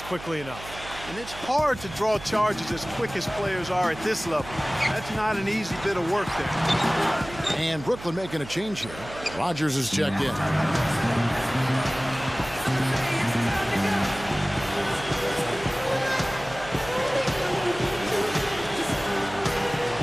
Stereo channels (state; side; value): noise; right; hum, 15 dB below the sound